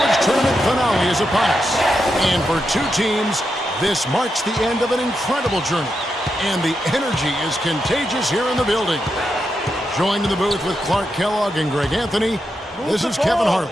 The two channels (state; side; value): normal; both; correlation 0.85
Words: tournament finale is upon us. And for two teams, this marks the end of an incredible journey. And the energy is contagious here in the building. Joined in the booth with Clark Kellogg and Greg Anthony, this is Kevin